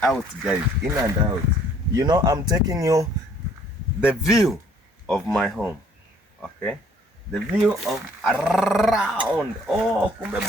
out, guys. In and out. You know, I'm taking you the view of my home. Okay, the view of around. Oh, kumbe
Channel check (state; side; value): normal; both; correlation 0.60